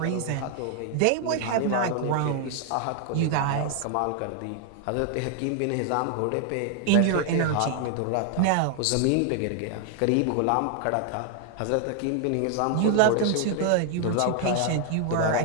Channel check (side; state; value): both; different; correlation 0.00